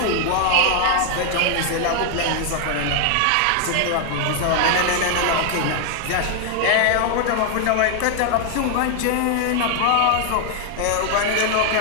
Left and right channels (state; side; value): different; both; correlation 0.00